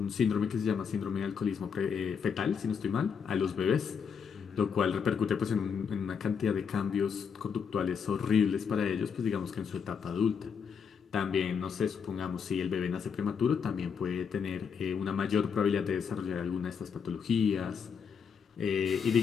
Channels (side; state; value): right; quieter; 6.6 dB